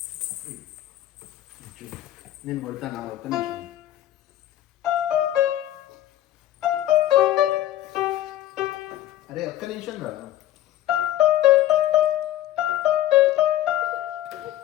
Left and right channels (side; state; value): right; quieter; 13.4 dB